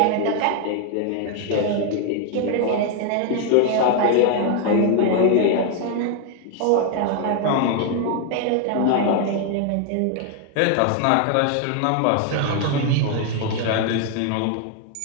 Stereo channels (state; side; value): different; both; correlation 0.00